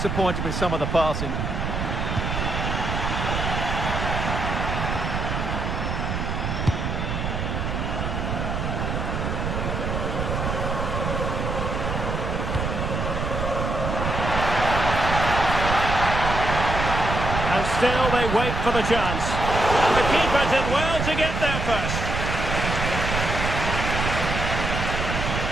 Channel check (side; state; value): right; noise; rumble, 2 dB below the sound